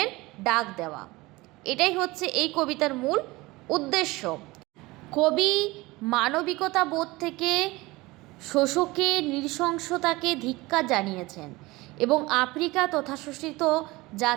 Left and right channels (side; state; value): left; quieter; 21.3 dB